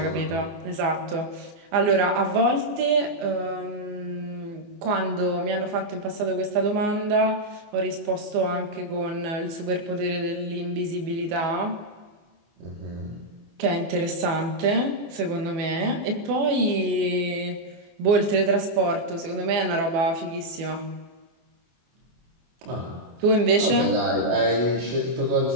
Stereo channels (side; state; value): left; late; 24 ms